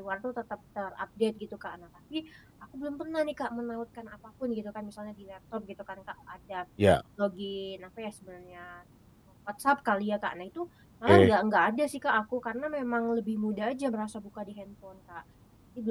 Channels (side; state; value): both; identical; correlation 1.00